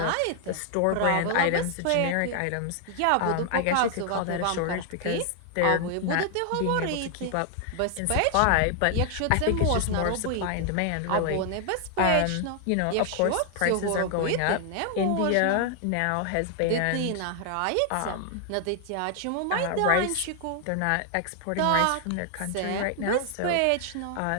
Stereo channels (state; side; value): different; both; correlation 0.00